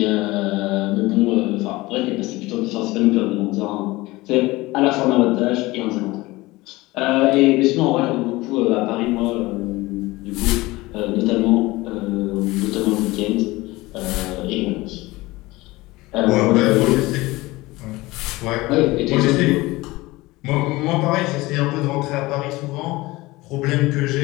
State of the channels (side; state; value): right; quieter; 20.5 dB